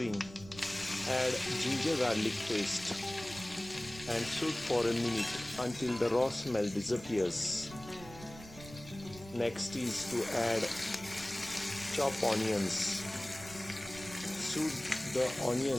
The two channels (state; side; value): noise; right; rumble, 16 dB below the sound